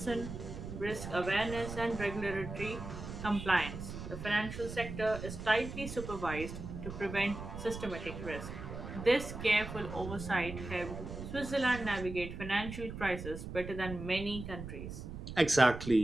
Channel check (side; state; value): right; noise; rumble, 9 dB below the sound